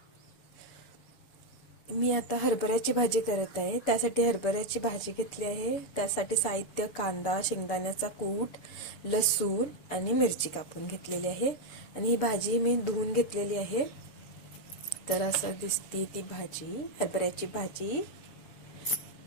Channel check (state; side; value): late; right; 6.9 ms